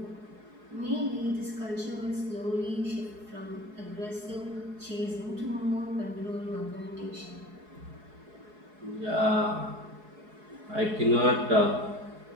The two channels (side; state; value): left; late; 4.7 ms